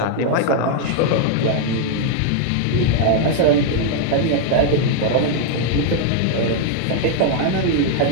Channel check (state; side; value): different; both; correlation 0.00